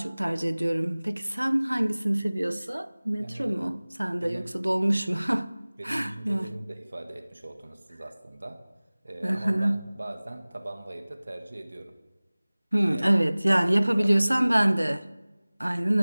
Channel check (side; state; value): both; inverted; correlation -0.99